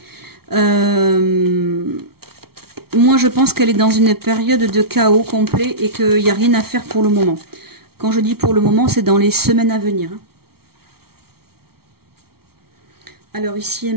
Moi, je pense qu'elle est dans une période de chaos complet et qu'il n'y a rien à faire pour le moment. Quand je dis pour le moment, c'est dans les semaines à venir. Hein. Alors, ici et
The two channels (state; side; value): late; left; 0.94 ms